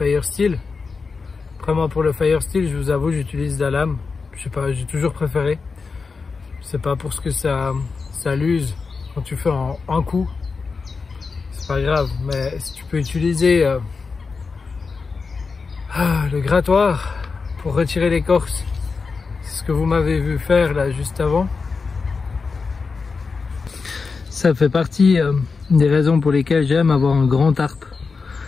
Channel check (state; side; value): quieter; right; 4.7 dB